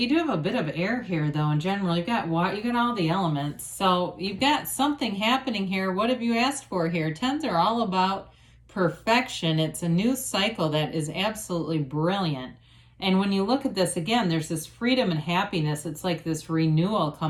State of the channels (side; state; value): both; identical; correlation 1.00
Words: have a bit of air here though in general. You've got water, you got all the elements. So you've got something happening here. What have you asked for here? Tens are all about perfection. It's a new cycle that is absolutely brilliant. And when you look at this again, there's this freedom and happiness. It's like this renewal